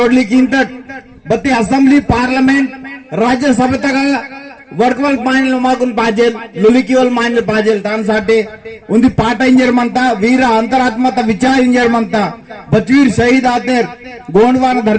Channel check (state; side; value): identical; both; correlation 1.00